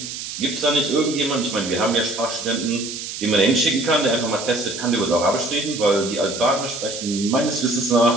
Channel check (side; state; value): right; noise; hiss, 8 dB below the sound